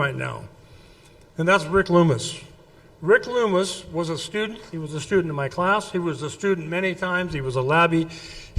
now. And that's Rick Loomis. Rick Loomis was a student. He was a student in my class. He was a student many times. He was a labbie.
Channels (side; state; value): both; identical; correlation 1.00